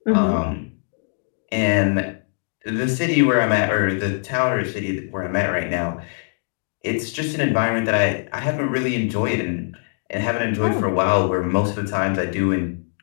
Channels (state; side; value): silent; right; digital silence